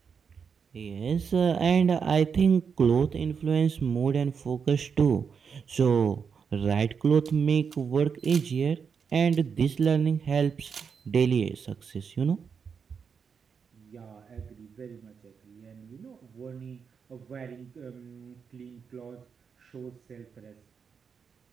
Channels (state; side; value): quieter; left; 6.3 dB